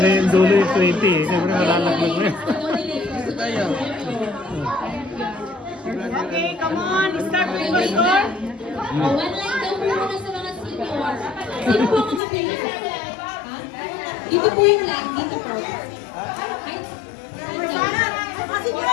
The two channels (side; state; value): right; drops out; at 12.2 s